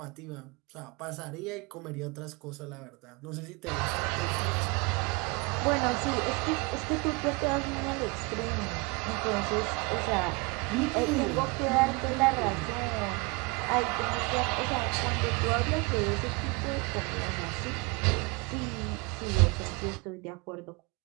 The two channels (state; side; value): quieter; left; 27.5 dB